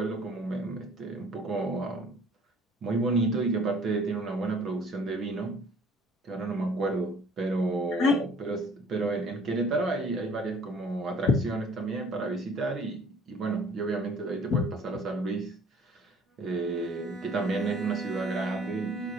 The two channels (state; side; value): normal; both; correlation 0.54